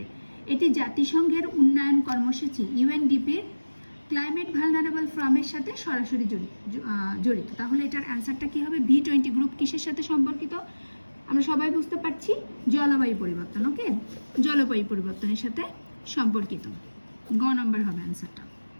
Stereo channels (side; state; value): both; inverted; correlation -1.00